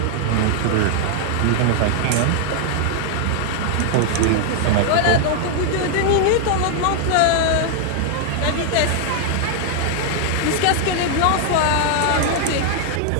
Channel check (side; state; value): both; different; correlation 0.00